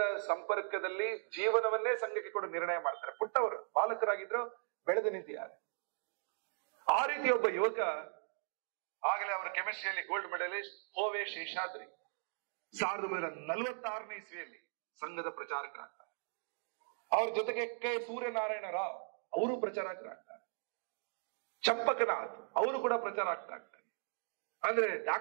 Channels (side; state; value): left; silent; digital silence